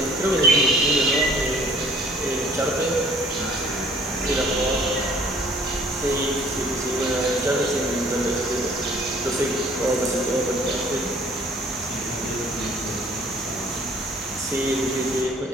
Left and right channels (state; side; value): normal; both; correlation 0.57